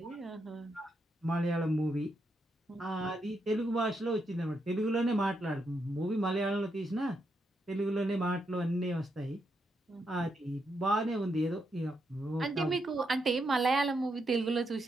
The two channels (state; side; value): normal; both; correlation 0.81